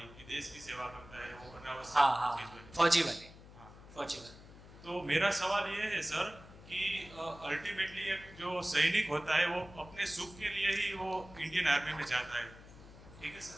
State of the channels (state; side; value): noise; left; hum, 18 dB below the sound